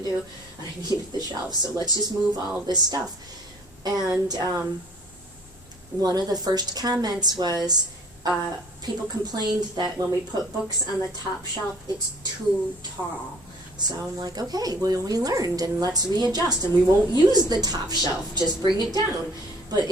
do, and I needed the shelves, so let's just move all of this stuff. And one of the first comments was, people complained that when we put books on the top shelf, it's too tall. So I'm like, okay, well, we learned, and let's readjust, and we won't use the top shelf, just bring it down. But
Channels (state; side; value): normal; both; correlation 0.54